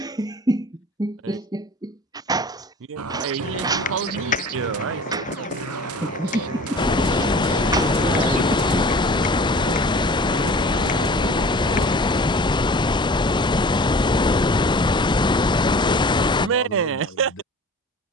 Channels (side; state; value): both; normal; correlation 0.43